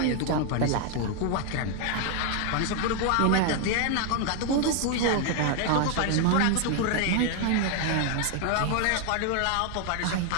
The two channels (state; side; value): different; both; correlation 0.00